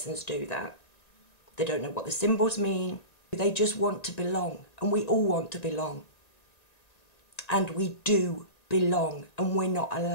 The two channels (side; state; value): right; late; 1.9 ms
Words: do that. They don't know what the symbols mean. They just want to belong, and we all want to belong. And we do belong, and we're not